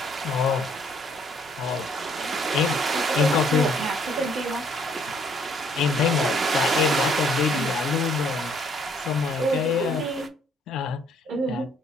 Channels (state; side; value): normal; both; correlation 0.64